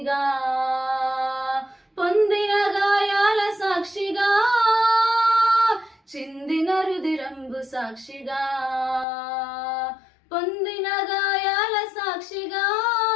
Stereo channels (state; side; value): drops out; right; at 9.1 s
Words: పొందిన గాయాల సాక్షిగా, చిందిన రుధిరంబు సాక్షిగా, పొందిన గాయాల సాక్షిగా,